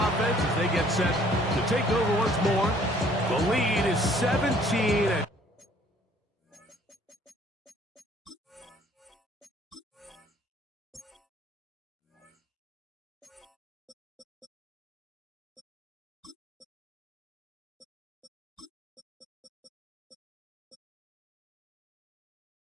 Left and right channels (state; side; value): normal; both; correlation 0.58